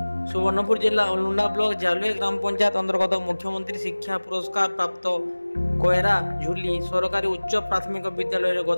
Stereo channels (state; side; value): inverted; both; correlation -1.00